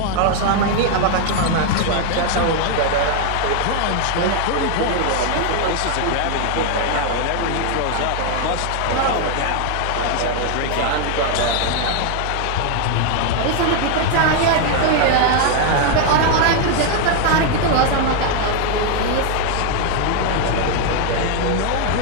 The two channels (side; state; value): both; different; correlation 0.00